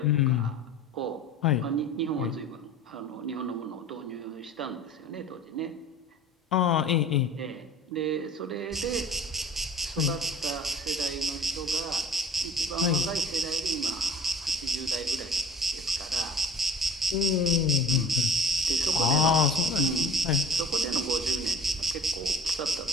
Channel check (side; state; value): both; normal; correlation 0.44